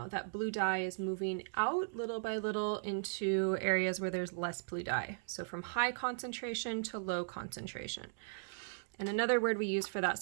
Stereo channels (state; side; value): silent; left; digital silence